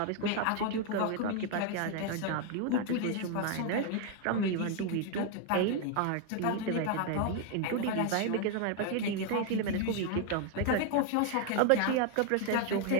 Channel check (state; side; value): different; both; correlation 0.00